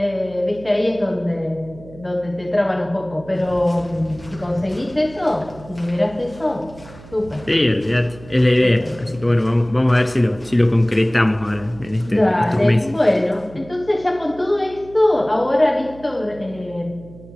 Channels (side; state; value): right; noise; hum, 19 dB below the sound